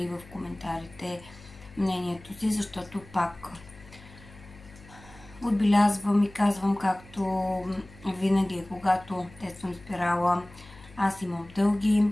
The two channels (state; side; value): noise; left; hum, 21 dB below the sound